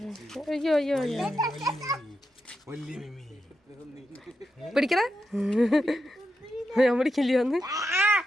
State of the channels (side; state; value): both; normal; correlation 0.86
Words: അയ്യോ അയ്യോ പിടിക്കണ ഞാൻ പിടിക്കില്ല ഒന്ന്